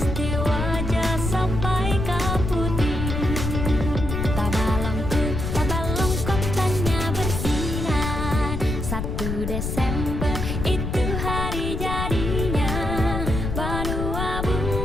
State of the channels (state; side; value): noise; left; rumble, 3 dB below the sound